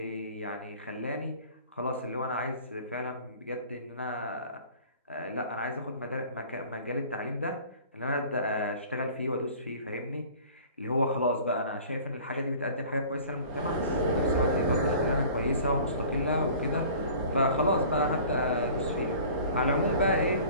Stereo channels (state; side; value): inverted; both; correlation -0.46